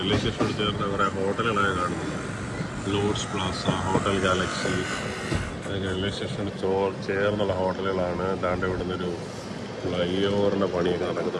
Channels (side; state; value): both; identical; correlation 1.00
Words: സ്റ്റേഷനോട് ചേർന്ന് കുറേ ഹോട്ടലുകളൊക്കെ കാണുന്നുണ്ട്. ലോഡ്സ് പ്ലാസ, ഹോട്ടൽ ഗാലക്സി, അതൊക്കെ റെയിൽവേ സ്റ്റേഷനോട് ചേർന്നുള്ള ഹോട്ടലുകളാണ്. ദാണ്ട് ഇവിടെ നിന്നൊരു ഫ്ലൈ ഓവറിൻ്റെ പണിയൊക്കെ